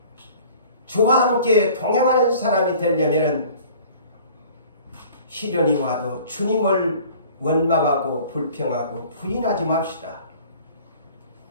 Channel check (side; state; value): both; inverted; correlation -0.48